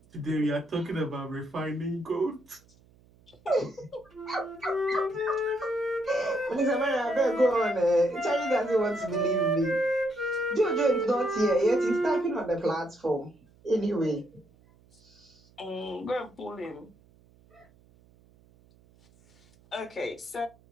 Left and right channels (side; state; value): right; noise; hum, 29 dB below the sound